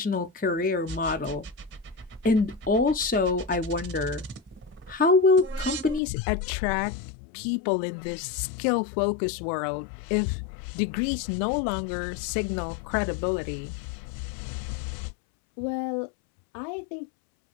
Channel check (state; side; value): drops out; right; at 6.0 s